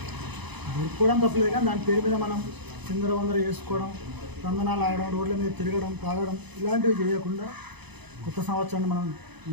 తప్పలేదు, కానీ దాని పేరు మీద మనం చిందరవందర చేసుకోవడం, తందనాలు ఆడడం, రోడ్ల మీద తిరగడం, తాగడం ఇలాంటివి చేయకుండా కొత్త సంవత్సరాన్ని మనం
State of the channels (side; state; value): left; late; 0.99 ms